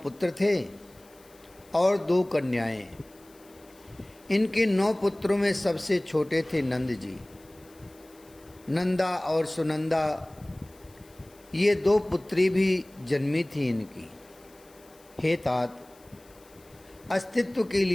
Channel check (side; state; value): left; noise; hiss, 27 dB below the sound